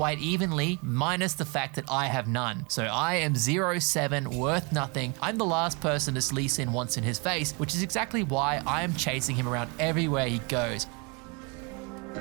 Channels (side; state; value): left; quieter; 31.0 dB